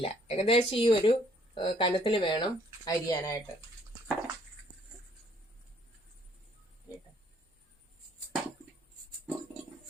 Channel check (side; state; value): both; normal; correlation 0.64